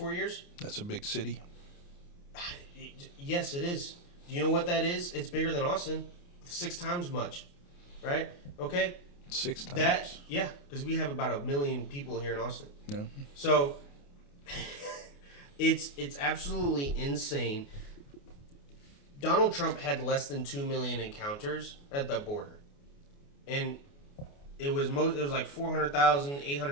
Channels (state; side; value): late; right; 28 ms